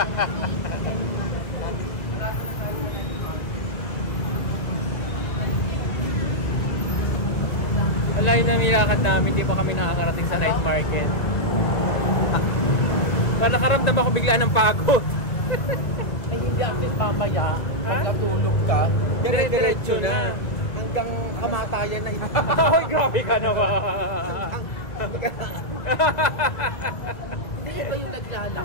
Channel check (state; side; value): late; right; 2.2 ms